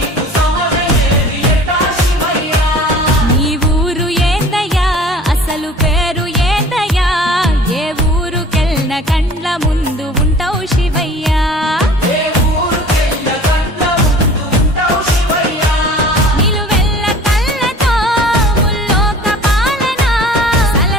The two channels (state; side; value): normal; both; correlation 0.46